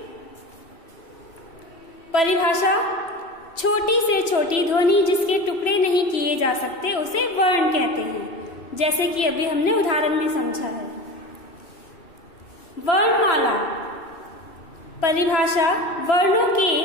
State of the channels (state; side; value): late; right; 3.0 ms